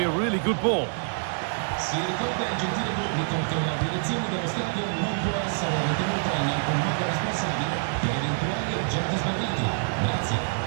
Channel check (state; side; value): silent; left; digital silence